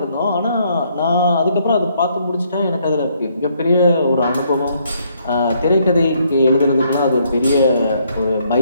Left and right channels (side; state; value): both; inverted; correlation -0.70